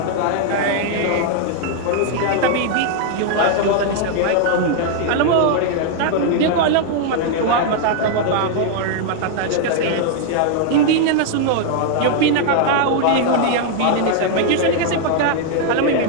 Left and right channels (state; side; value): different; both; correlation 0.00